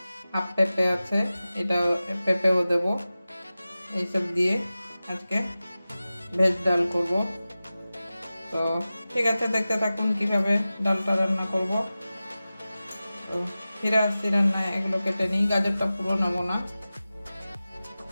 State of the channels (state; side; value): inverted; both; correlation -0.96